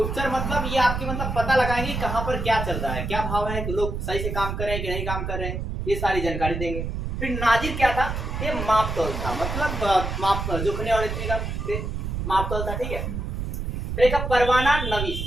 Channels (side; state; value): right; noise; rumble, 3 dB below the sound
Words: मतलब ये आपके मतलब पता लगाएंगे कहाँ पर क्या चल रहा है, क्या भाव है, लोग सही से काम कर रहे हैं कि नहीं काम कर रहे हैं, ये सारी जानकारी देंगे। फिर नाजिर क्या था, ये माप तौल था, मतलब माप जोखने और माप तौल था, ठीक है। फिर एक परवाना नवीस,